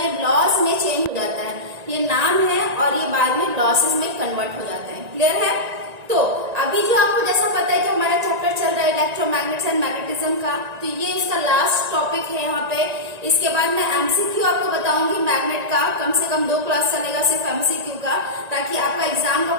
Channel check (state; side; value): late; left; 1.9 ms